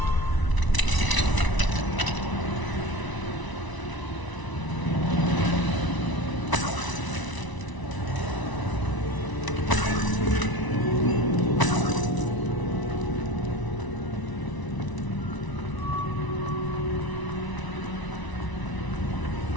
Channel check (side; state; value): right; late; 1.0 ms